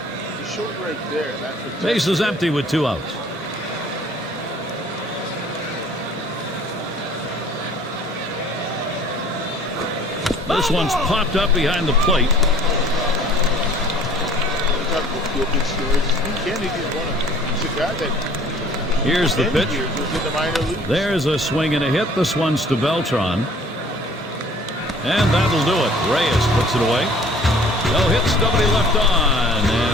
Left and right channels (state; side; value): normal; both; correlation 0.52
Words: he showed right there. That Base is empty with 2 outs. This one's popped up behind the plate. Kennedy is one of them. He's a guy that Here's the pitch. years was in the minor leagues. There's a swing and a hit. This one's to Beltran. And that'll do it. Reyes puts it away. No hits, nobody left on.